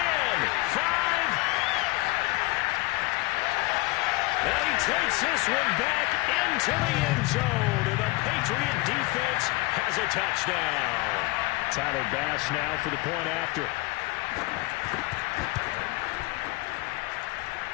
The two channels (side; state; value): right; quieter; 22.1 dB